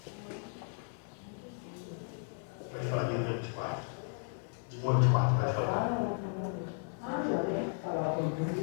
Pode falar de 1 a 24. De 1 a 24, pode falar.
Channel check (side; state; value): right; silent; 54 dB below the other